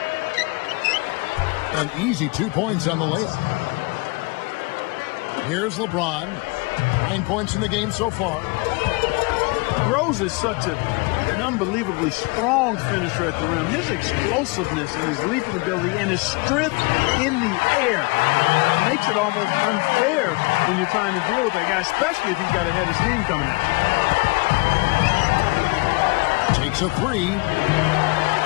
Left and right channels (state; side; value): quieter; right; 27.1 dB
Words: An easy 2 points on the layup. Here's LeBron. 9 points in the game so far. Rose is such an unbelievably strong finisher at the rim. His explosiveness and his leaping ability and his strength in the air makes it almost unfair when you're trying to deal with that guy, especially if he's got a head of steam coming at you. Takes a three.